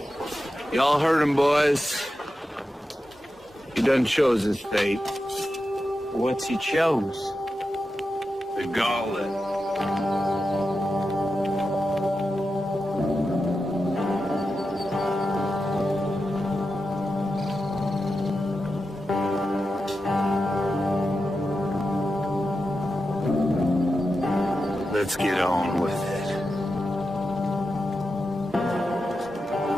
Y'all heard him, boys. He done chose his fate. What's he chose? The gauntlet. Let's get on with it.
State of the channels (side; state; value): both; normal; correlation 0.90